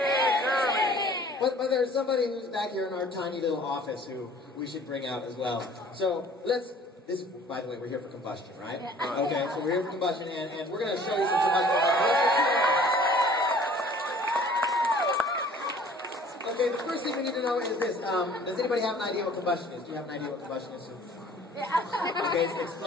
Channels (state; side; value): normal; both; correlation 0.51